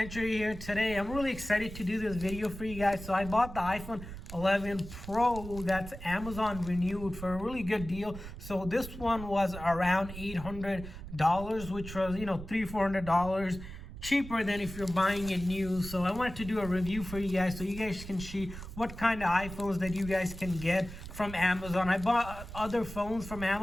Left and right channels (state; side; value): noise; right; rumble, 11 dB below the sound